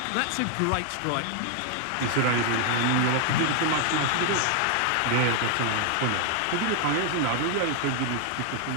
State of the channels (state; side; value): different; both; correlation 0.00